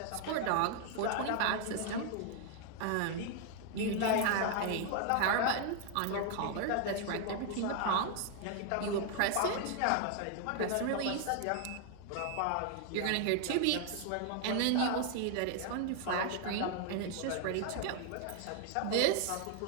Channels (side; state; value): both; different; correlation 0.00